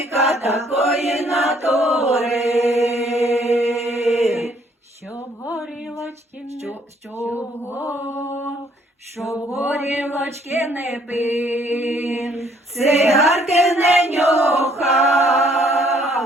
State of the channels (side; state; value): both; normal; correlation 0.64